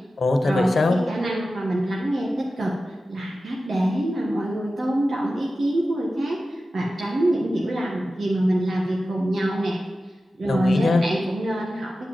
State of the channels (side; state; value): both; normal; correlation 0.94